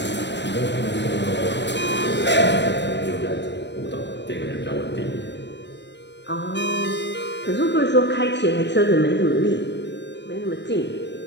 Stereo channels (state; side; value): late; right; 0.51 ms